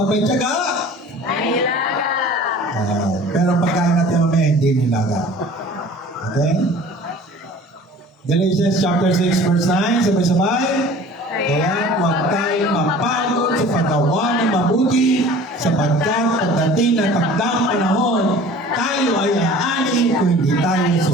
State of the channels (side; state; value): both; normal; correlation 0.45